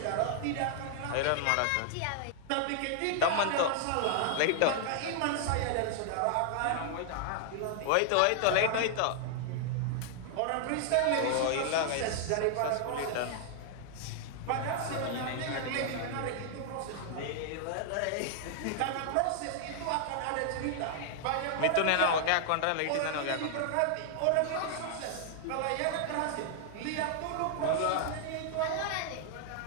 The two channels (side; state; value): both; different; correlation 0.00